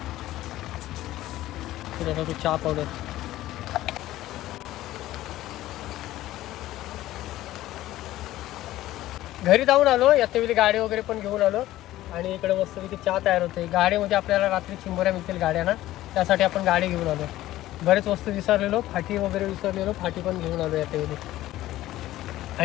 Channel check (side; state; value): right; quieter; 15.2 dB